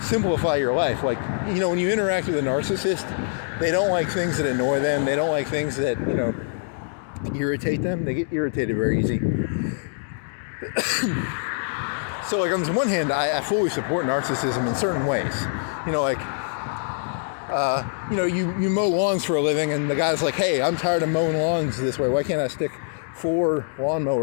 your life. Like, you know, when you interact with a narcissist, they don't like things that annoy them. They don't like things that, you know, irritate them. They get irritated very easy. So, like, on this one hand, I fully support narcissism in certain ways. You know, like, you know, you mow lawns for a living, and the guy's like, hey, I'm tired of mowing lawns this way. Why can't I stick 4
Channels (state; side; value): silent; right; digital silence